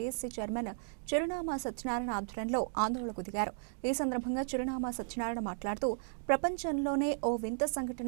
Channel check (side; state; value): left; silent; digital silence